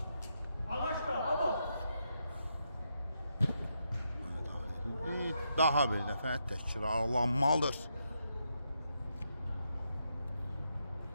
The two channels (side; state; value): both; inverted; correlation -0.82